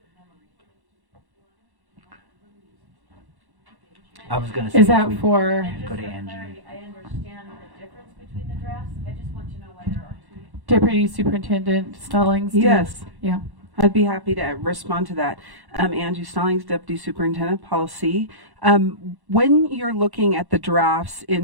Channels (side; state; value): left; late; 1.1 ms